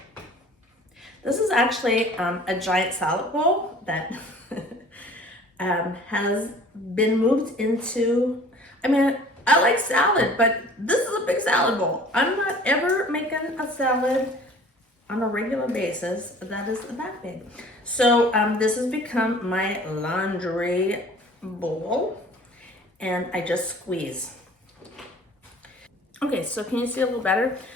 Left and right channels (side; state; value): both; normal; correlation 0.48